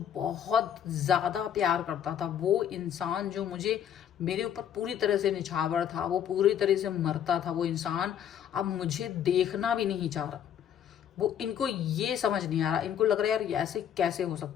बहुत ज़्यादा प्यार करता था, वो इंसान जो मुझे मेरे ऊपर पूरी तरह से निछावर था, वो पूरी तरह से मरता था, वो इंसान अब मुझे देखना भी नहीं चाह रहा। वो इनको ये समझ नहीं आ रहा, इनको लग रहा है यार ऐसे कैसे हो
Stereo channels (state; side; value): quieter; right; 9.4 dB